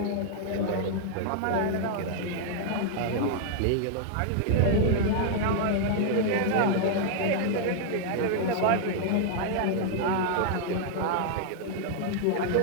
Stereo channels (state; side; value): different; both; correlation 0.00